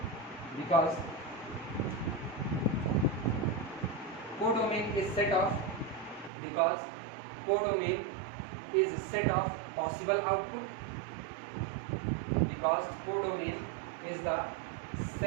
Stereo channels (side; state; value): left; drops out; at 6.3 s